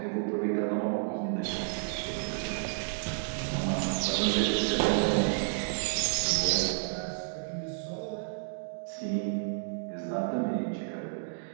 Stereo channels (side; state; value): left; silent; digital silence